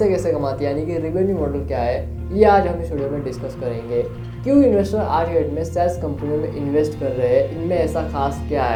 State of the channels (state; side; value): identical; both; correlation 1.00